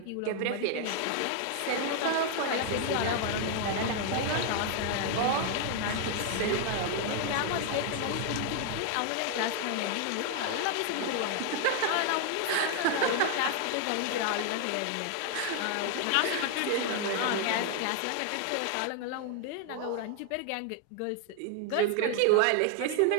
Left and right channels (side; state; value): both; different; correlation 0.00